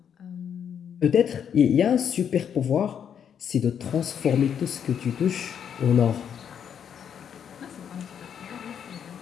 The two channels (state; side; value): quieter; right; 8.2 dB